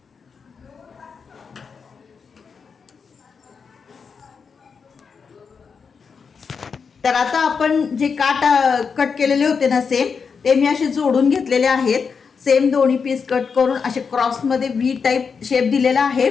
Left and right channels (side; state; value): right; quieter; 5.7 dB